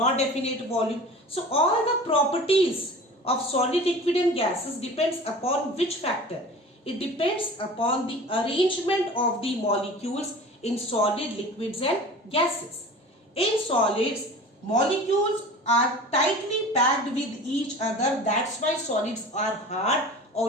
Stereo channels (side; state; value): both; normal; correlation 0.39